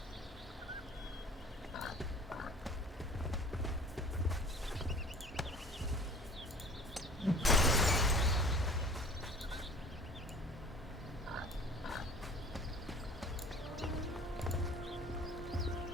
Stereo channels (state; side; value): normal; both; correlation 0.44